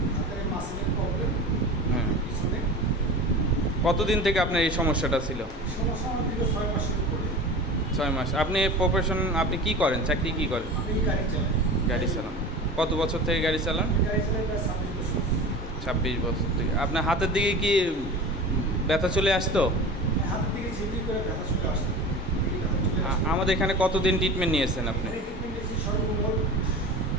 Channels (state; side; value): normal; both; correlation 0.34